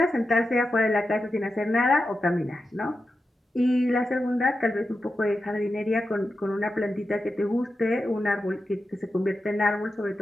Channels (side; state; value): both; normal; correlation 0.90